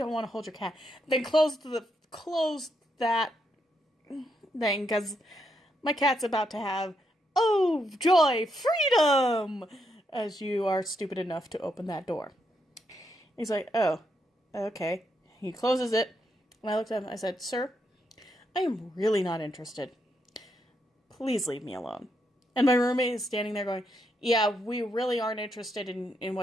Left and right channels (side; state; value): both; normal; correlation 0.79